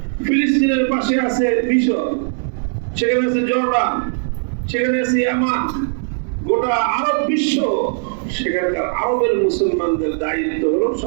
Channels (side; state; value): left; silent; 67 dB below the other